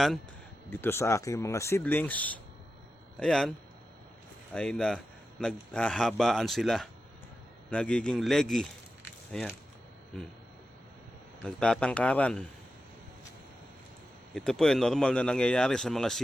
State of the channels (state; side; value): normal; both; correlation 0.91